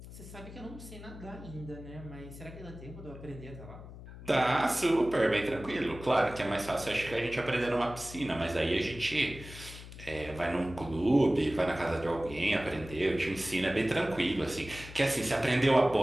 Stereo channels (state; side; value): noise; left; hum, 14 dB below the sound